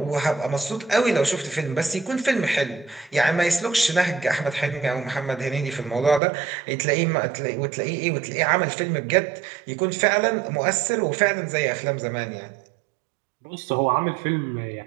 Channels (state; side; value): drops out; left; at 6.2 s